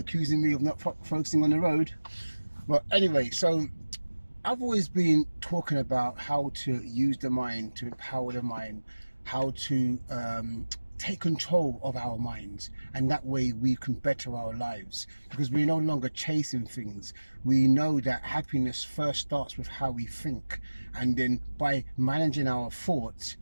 me of not focusing on the road. But anyway, so I've always been talking about how to use the mind, to empower the mind, how to take control of our minds, and that way we can better our lives because we're no longer chasing things. We know that happiness first starts with how we think, and then by managing our thoughts,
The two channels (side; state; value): both; inverted; correlation -1.00